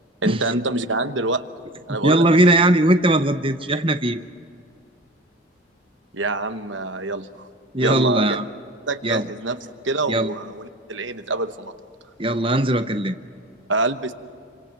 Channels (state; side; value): normal; both; correlation 0.38